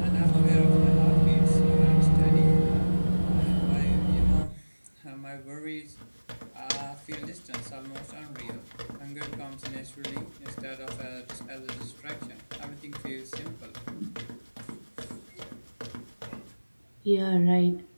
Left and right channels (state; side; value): inverted; both; correlation -1.00